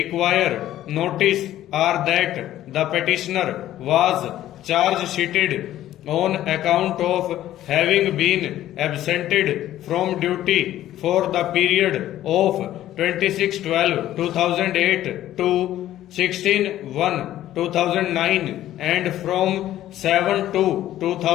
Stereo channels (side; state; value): right; quieter; 13.2 dB